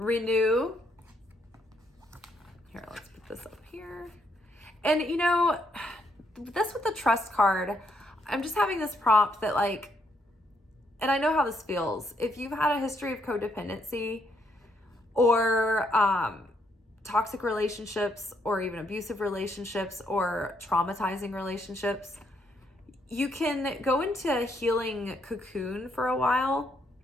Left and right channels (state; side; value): normal; both; correlation 0.73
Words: Here, let's put this up here. And this with the trust card, I'm just having this prompt that like, and I know how this feels. If you've had a history of codependency, or toxic relationships, or even abusive relationships, or traumatizing relationships, you can go into a healing cocoon for a while,